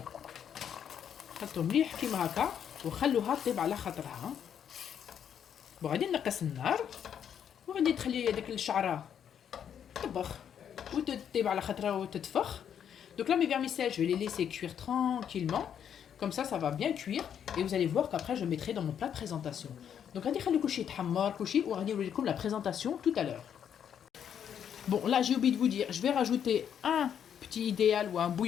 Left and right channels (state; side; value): quieter; right; 8.7 dB